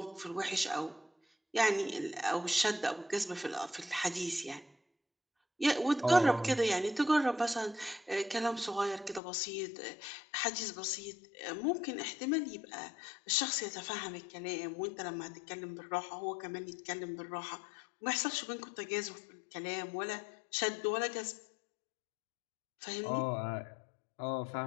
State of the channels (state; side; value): drops out; right; at 9.2 s